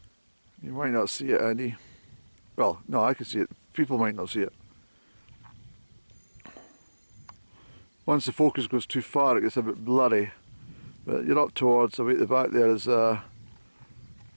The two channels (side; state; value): both; inverted; correlation -1.00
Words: You might not see it, Andy. Well, no, I can see it. People might not see it. Once the focus goes too far, it gets a bit blurry. But you're up towards, away at the back there is